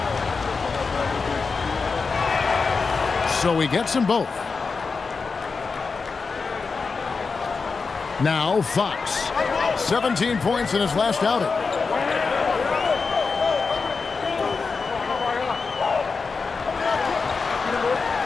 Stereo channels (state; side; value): quieter; right; 4.7 dB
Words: So he gets them both. Now Fox. 17 points in his last outing.